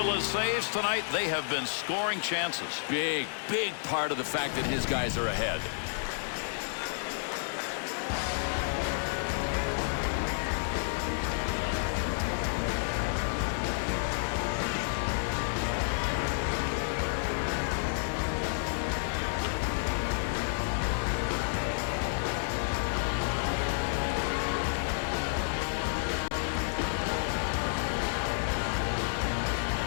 saves tonight, they have been scoring chances. Big part of the fact that his guys are ahead.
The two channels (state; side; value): silent; right; digital silence